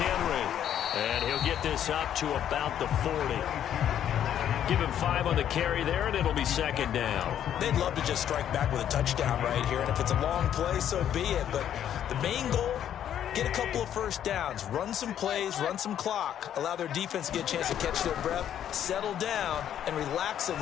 And he'll get this up to about the 40. Give him 5 on the carry there, and it'll be 2nd down. They'd love to just strike back with a touchdown right here. And if it's a long play, so be it. But the main goal, get a couple of first downs. Run some plays, run some clock. Allow their defense to get a chance to catch their breath, settle down, and relax a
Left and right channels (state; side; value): quieter; right; 10.2 dB